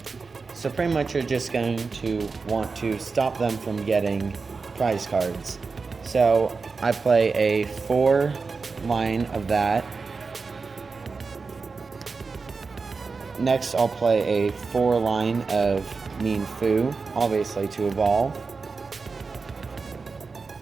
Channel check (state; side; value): quieter; left; 4.5 dB